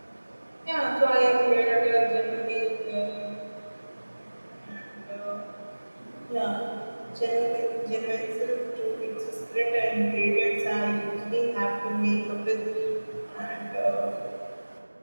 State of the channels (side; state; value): both; inverted; correlation -1.00